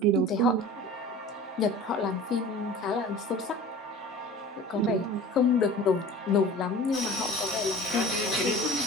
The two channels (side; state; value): both; normal; correlation 0.40